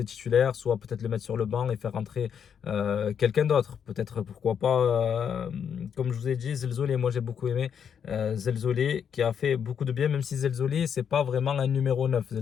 titulaire, soit peut-être le mettre sur le banc et faire rentrer quelqu'un d'autre. Peut-être, pourquoi pas, comme je vous ai dit, Zelzoli. Moi, j'ai beaucoup aimé Zelzoli qui a fait beaucoup de bien, même si Zelzoli, c'est pas vraiment un numéro 9.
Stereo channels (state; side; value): quieter; right; 7.8 dB